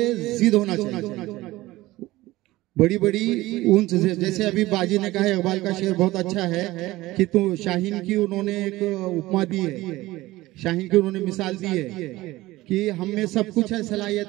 जिद होना चाहिए, बड़ी बड़ी ऊंच। जैसे अभी बाजी ने कहा, इकबाल का शेर बहुत अच्छा है कि तू शाहीन की उन्होंने एक उपमा दी है, शाहीन की उन्होंने मिसाल दी है कि हम में सब कुछ है,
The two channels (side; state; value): left; quieter; 18.2 dB